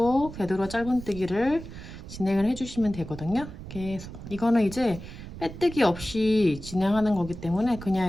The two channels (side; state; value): right; noise; rumble, 12 dB below the sound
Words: 되돌아 짧은뜨기를 진행을 해주시면 되거든요. 계속. 이거는 이제 빼뜨기 없이 진행하는 거기 때문에 그냥